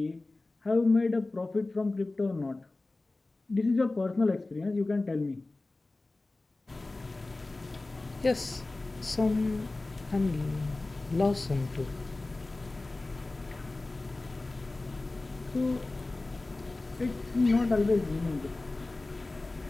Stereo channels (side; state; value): right; quieter; 3.1 dB